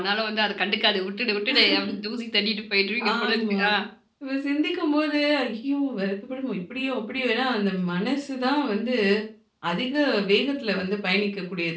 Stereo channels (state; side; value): identical; both; correlation 1.00